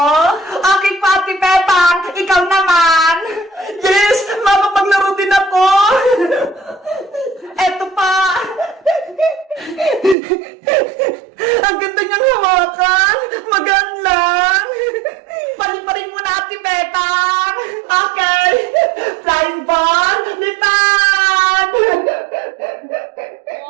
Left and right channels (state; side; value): drops out; left; at 10.2 s